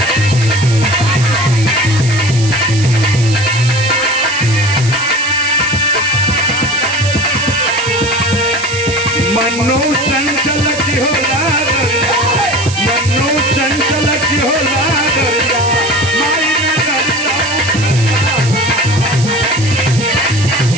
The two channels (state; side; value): noise; right; hiss, 10 dB below the sound